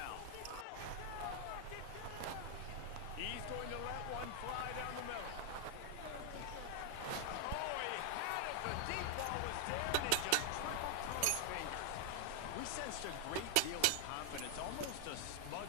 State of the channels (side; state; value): both; different; correlation 0.00